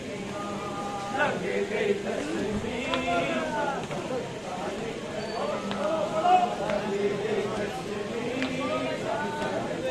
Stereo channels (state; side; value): identical; both; correlation 1.00